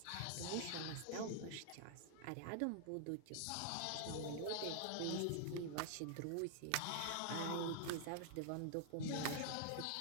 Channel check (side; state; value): both; different; correlation 0.00